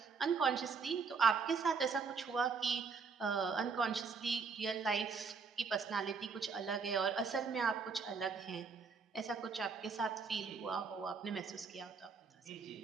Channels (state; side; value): quieter; left; 5.1 dB